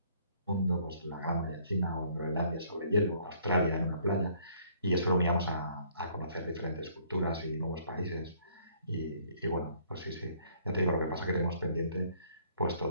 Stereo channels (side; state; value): both; inverted; correlation -0.62